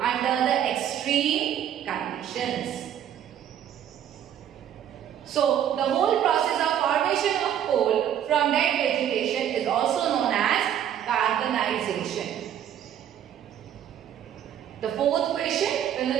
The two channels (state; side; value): quieter; left; 10.1 dB